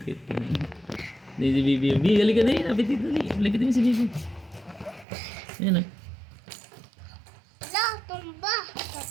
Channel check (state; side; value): drops out; left; at 5.1 s